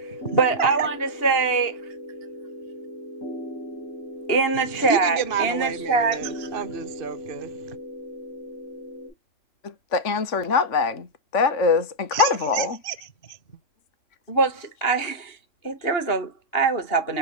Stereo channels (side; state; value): right; late; 2.8 ms